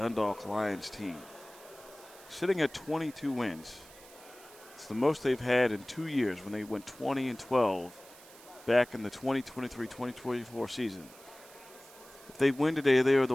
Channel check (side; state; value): right; noise; hiss, 21 dB below the sound